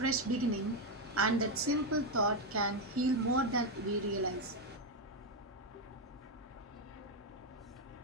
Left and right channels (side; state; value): both; normal; correlation 0.05